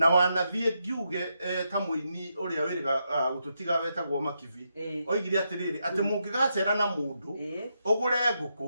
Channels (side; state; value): both; inverted; correlation -0.83